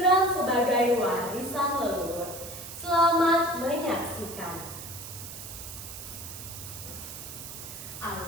sebagai warisan leluhur. Selamat menyaksikan.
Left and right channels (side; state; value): right; noise; hiss, 11 dB below the sound